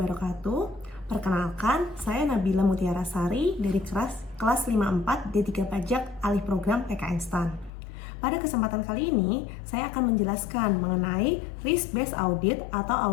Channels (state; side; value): drops out; right; at 7.7 s